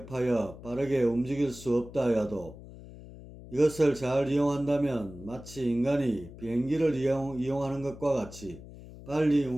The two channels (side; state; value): left; noise; hum, 16 dB below the sound